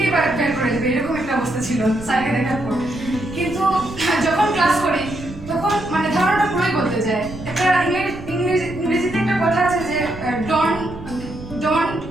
বের করে দেবে, এরকম একটা অবস্থা ছিল স্যারকে দেখার পর। কিন্তু যখন ক্লাস করি তখন মানে ধারণাটা পুরোই বদলে যায়। একটা ইংরেজিতে একটা কথা আছে যে ডোন্ট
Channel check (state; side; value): noise; right; rumble, 14 dB below the sound